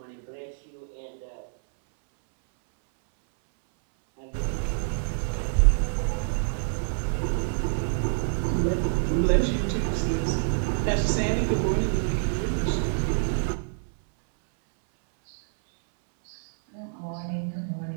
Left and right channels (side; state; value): left; silent; 60 dB below the other